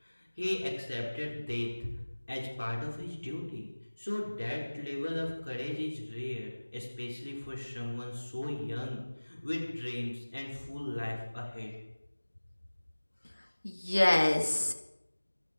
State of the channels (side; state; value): both; inverted; correlation -1.00